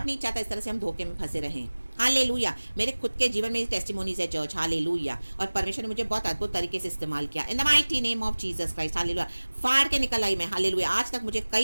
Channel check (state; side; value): inverted; both; correlation -1.00